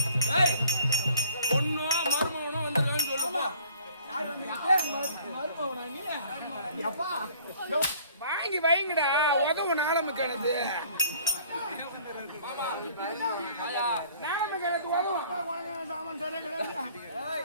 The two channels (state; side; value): inverted; both; correlation -0.55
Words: பொண்ணோ மருமகனோ வந்துருக்கான்னு சொல்லுமா? வாங்கி வைங்கடா, உதவு நாளம கிணத்து சாமான் சரியா கிடையாது.